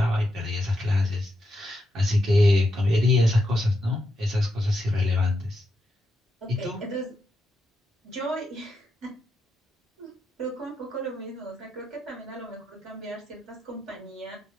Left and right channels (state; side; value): normal; both; correlation 0.84